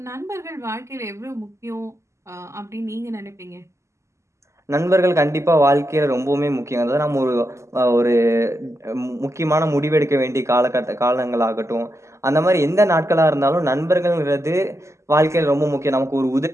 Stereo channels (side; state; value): left; late; 0.14 ms